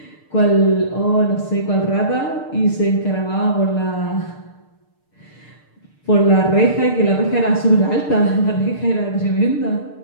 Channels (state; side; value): late; right; 6.6 ms